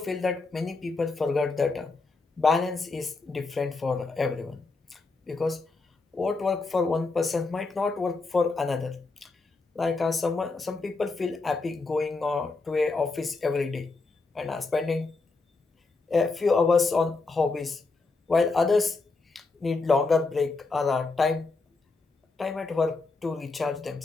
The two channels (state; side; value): quieter; right; 3.8 dB